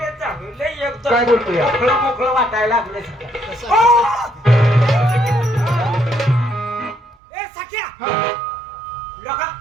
जावं लय एकदम काय बोलतोय मोकळं मोकळं वाटायला लागलं ए सख्या लोका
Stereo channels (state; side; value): drops out; left; at 7.2 s